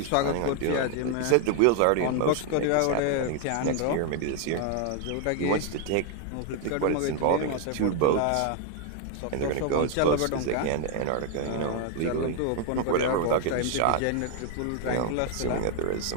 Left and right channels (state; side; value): different; both; correlation 0.00